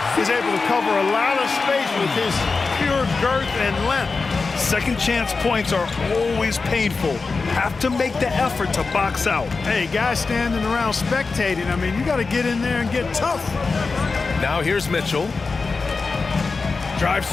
is able to cover a lot of space with his pure girth and length. Second chance points are always painful. Have to make the effort to box out. Hey, guys standing around spectating, I mean, you got to get in there and get tough. Now here's Mitchell. Drives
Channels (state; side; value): quieter; right; 4.3 dB